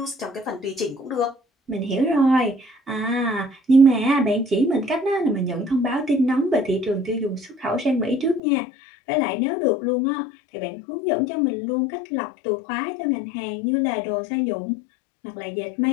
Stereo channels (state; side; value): drops out; right; at 8.4 s